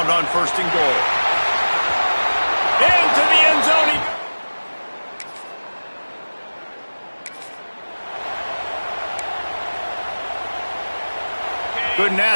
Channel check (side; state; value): both; inverted; correlation -1.00